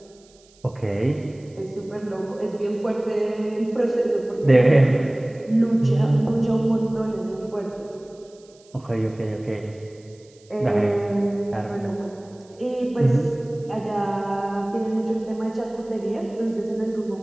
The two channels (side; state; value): right; noise; hiss, 29 dB below the sound